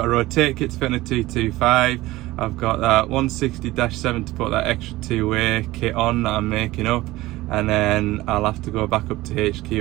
a rotate kit to fit on a 225. I've got that 160-7 to put that extra two-way kit on that I'm making up, and then I'll have to go back up to HQ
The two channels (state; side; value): quieter; left; 18.1 dB